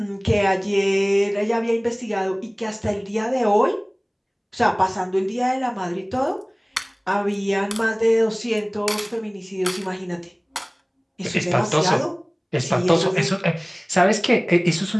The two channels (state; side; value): identical; both; correlation 1.00